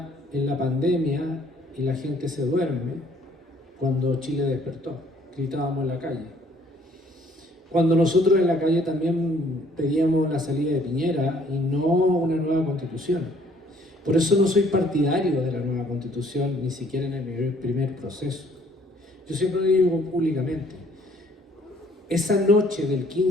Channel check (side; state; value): both; normal; correlation 0.61